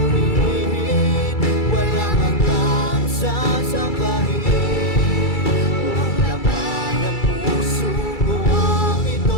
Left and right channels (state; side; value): late; right; 2.3 ms